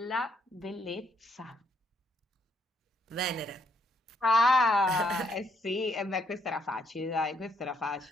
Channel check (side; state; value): both; normal; correlation 0.72